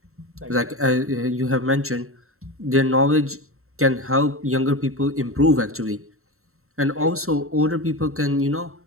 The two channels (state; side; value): late; left; 0.63 ms